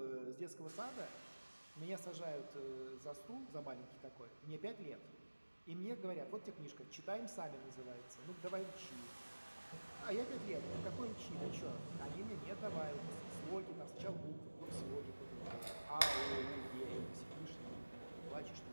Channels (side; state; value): both; inverted; correlation -1.00